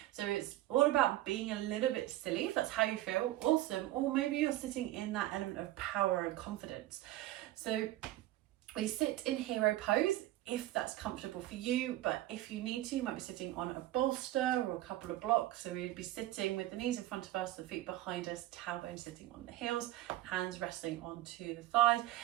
So it's all about being a little bit silly, if that's how you feel. Awesome. Or maybe you're sitting in that element of power and confidence. So we sit in hero pose if that's comfortable for you, but if you need to, you might be sitting on a bolster or a couple of blocks. So we'd be sitting with the knees in front of us, the feet behind us, tailbone sitting on the heels, hands resting onto the thighs.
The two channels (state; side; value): quieter; left; 15.5 dB